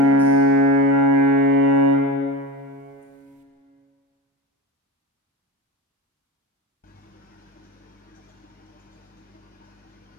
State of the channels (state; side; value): normal; both; correlation 0.23